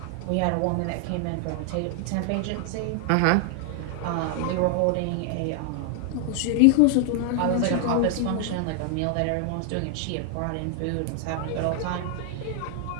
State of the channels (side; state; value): both; different; correlation 0.00